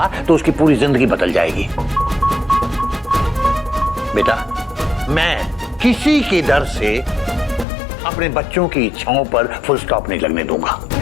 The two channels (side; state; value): right; drops out; at 7.7 s